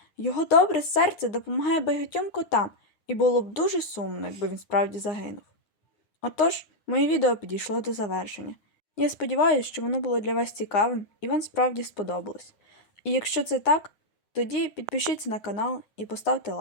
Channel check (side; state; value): right; late; 9.7 ms